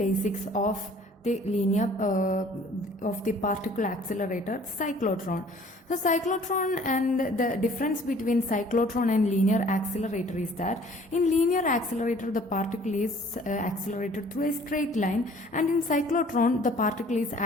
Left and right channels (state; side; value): normal; both; correlation 0.54